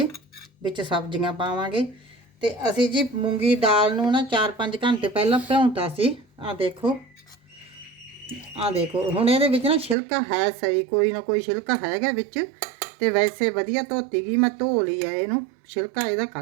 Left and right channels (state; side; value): drops out; left; at 10.0 s